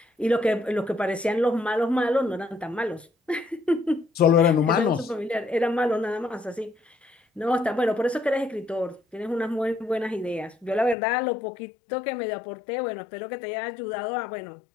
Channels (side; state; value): right; drops out; at 11.0 s